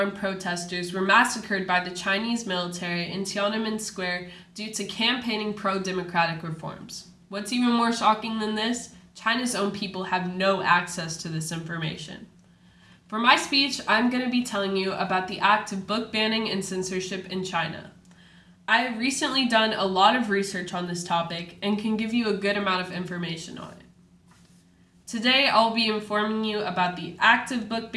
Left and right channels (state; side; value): identical; both; correlation 1.00